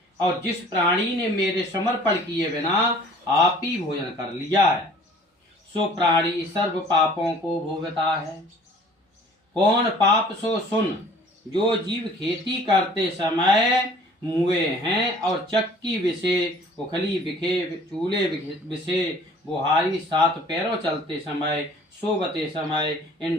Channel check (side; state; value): both; normal; correlation 0.51